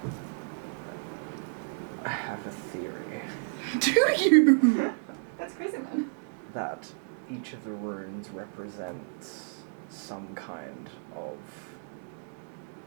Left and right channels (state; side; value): silent; left; digital silence